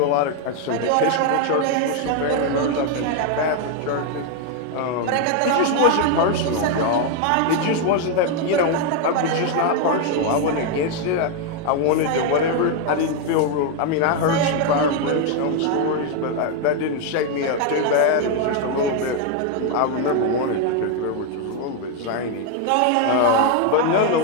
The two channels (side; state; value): both; different; correlation 0.01